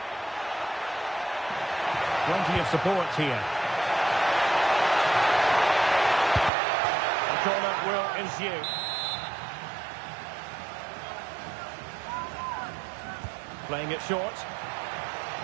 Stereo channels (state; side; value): drops out; left; at 6.5 s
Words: Plenty of support here. The corner will ensue. Playing it short.